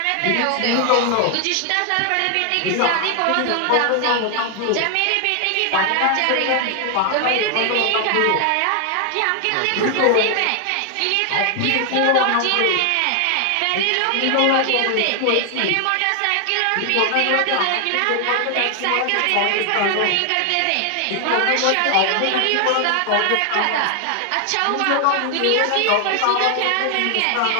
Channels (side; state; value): both; different; correlation 0.00